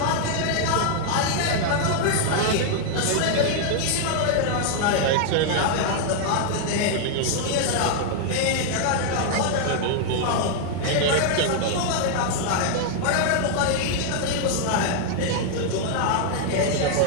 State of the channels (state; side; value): different; both; correlation 0.00